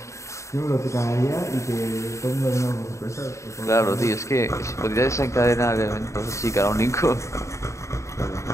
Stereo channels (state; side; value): late; right; 0.14 ms